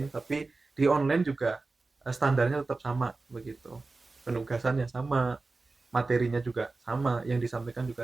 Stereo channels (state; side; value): quieter; left; 3.6 dB